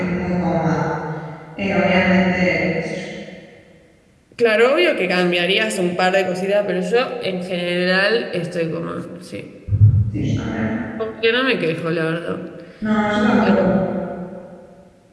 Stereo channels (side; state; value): both; identical; correlation 1.00